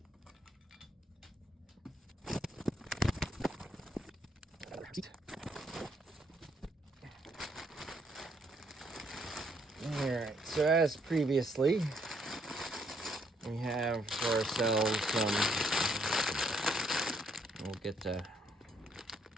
Alright, so as previously, we have for ourselves some, we'll get to,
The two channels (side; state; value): both; normal; correlation 0.71